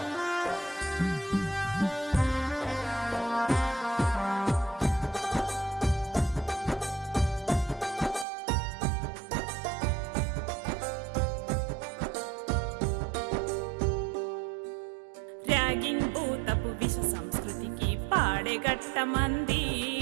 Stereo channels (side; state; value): left; drops out; at 8.2 s